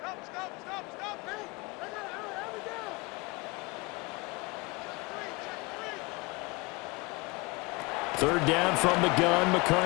Third down from the gun,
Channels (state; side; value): quieter; right; 25.9 dB